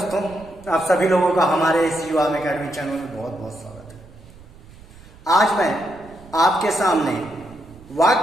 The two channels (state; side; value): noise; right; rumble, 22 dB below the sound